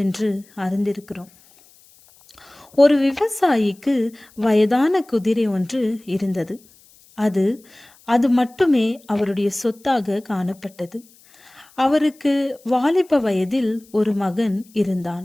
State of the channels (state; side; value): noise; left; hiss, 28 dB below the sound